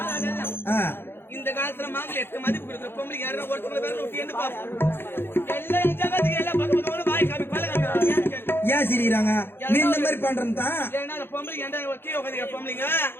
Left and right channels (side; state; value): right; late; 0.11 ms